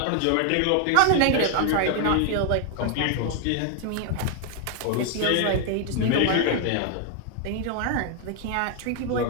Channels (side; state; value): both; different; correlation 0.00